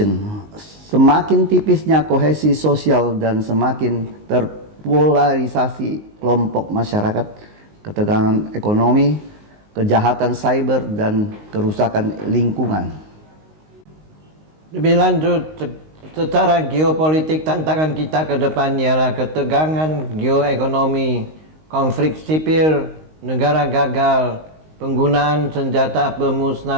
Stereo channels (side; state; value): left; late; 19 ms